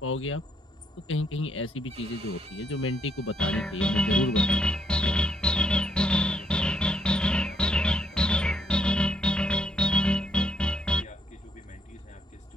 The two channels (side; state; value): both; normal; correlation 0.74